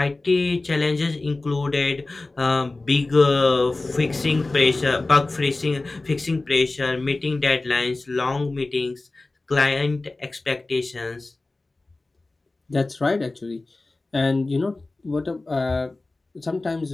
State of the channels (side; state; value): right; quieter; 3.2 dB